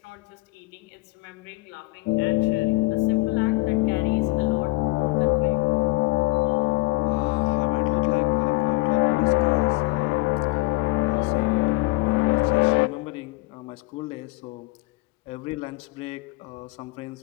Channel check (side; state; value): right; quieter; 22.9 dB